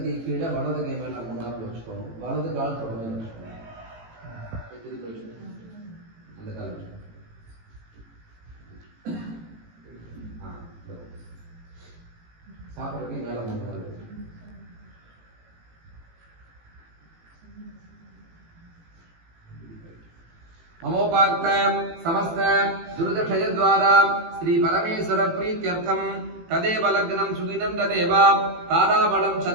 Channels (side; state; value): left; late; 18 ms